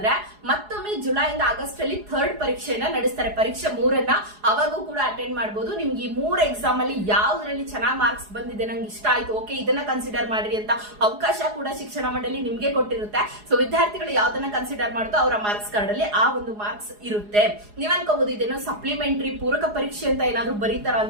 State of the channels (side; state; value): left; late; 4.8 ms